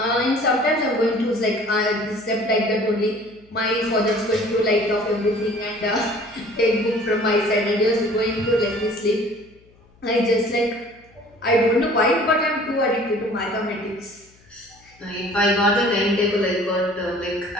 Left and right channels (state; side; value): noise; left; hum, 30 dB below the sound